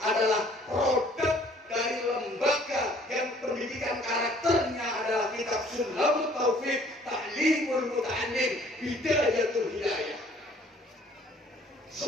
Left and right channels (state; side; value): normal; both; correlation 0.57